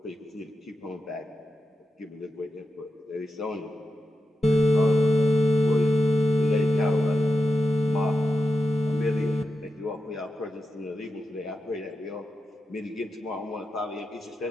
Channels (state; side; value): normal; both; correlation 0.89